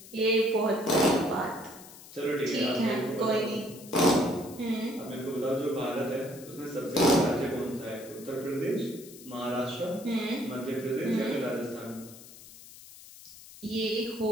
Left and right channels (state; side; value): noise; left; hiss, 18 dB below the sound